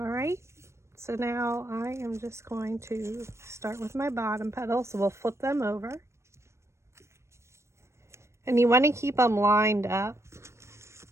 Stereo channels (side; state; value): left; late; 0.13 ms